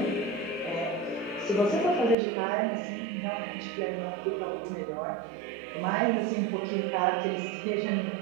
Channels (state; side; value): drops out; left; at 2.1 s